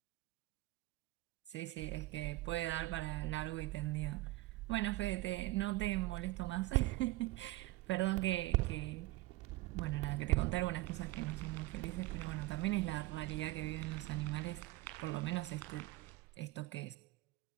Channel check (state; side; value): quieter; left; 18.7 dB